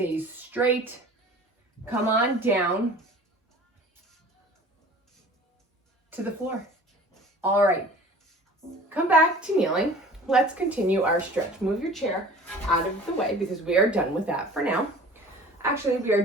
straight, come on down to the floor. All right, come back to kneeling. Let's continue our stretch. Move your chair out of the way because we are done with that for now. Actually, we are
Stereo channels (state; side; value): normal; both; correlation 0.44